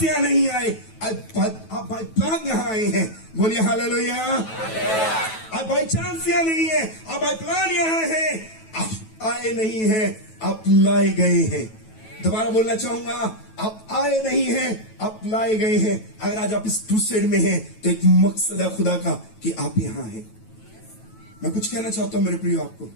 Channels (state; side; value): late; right; 9.2 ms